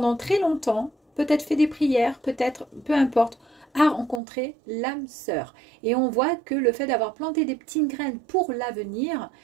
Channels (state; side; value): drops out; left; at 4.2 s